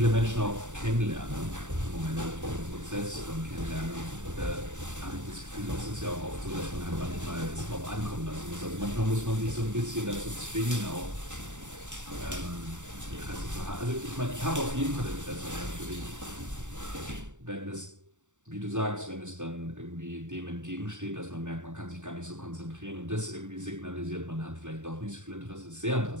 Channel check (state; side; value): late; left; 0.85 ms